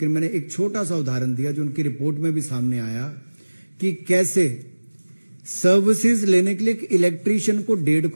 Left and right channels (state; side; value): inverted; both; correlation -1.00